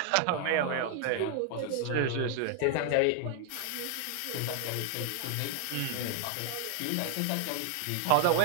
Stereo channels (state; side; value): different; both; correlation 0.00